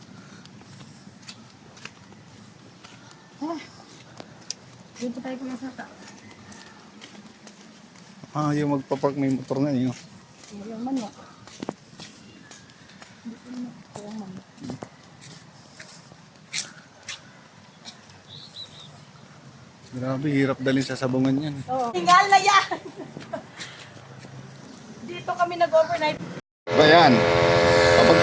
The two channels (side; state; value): both; identical; correlation 1.00